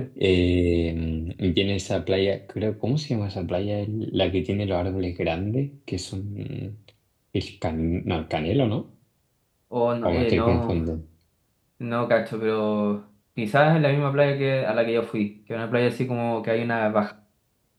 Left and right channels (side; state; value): both; identical; correlation 1.00